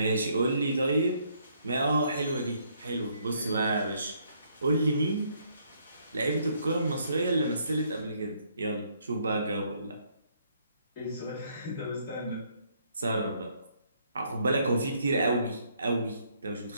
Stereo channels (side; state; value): both; inverted; correlation -0.69